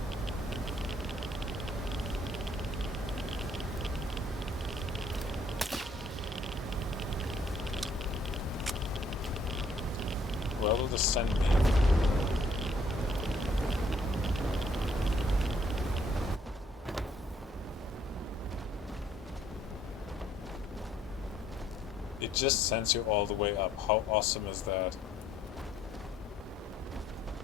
Where will this send me? It just sends you all the way up. How awesome is that?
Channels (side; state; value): both; normal; correlation 0.64